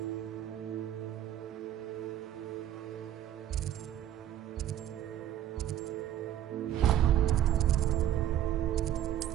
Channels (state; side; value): quieter; left; 11.6 dB